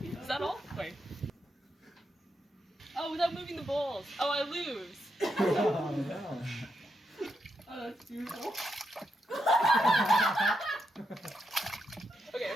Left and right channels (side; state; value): both; normal; correlation 0.83